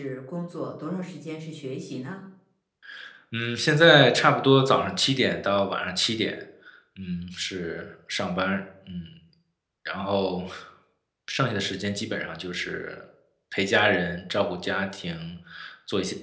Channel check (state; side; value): identical; both; correlation 1.00